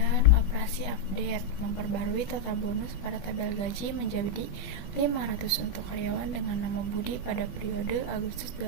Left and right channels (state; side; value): late; right; 20 ms